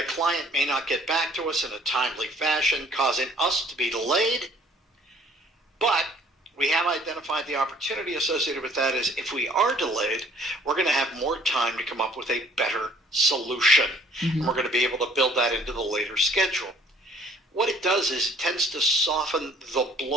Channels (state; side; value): normal; both; correlation 0.57